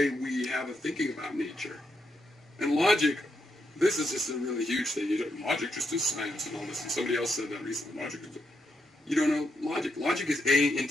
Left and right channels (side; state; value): both; normal; correlation 0.81